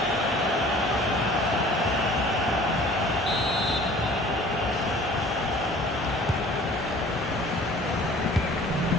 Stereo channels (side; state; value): both; normal; correlation 0.49